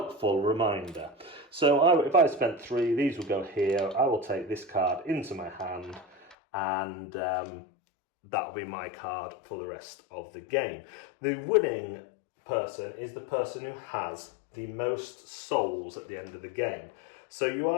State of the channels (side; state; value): right; drops out; at 6.4 s